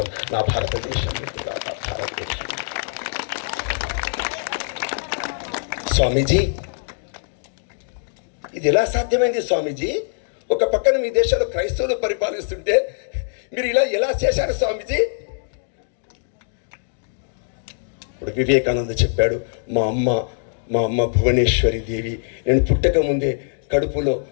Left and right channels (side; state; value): right; silent; digital silence